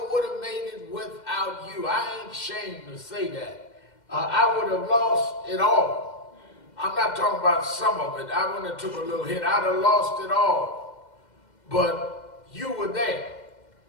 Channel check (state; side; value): late; right; 2.1 ms